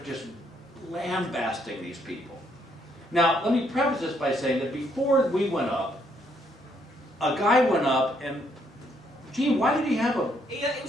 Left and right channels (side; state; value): both; normal; correlation 0.71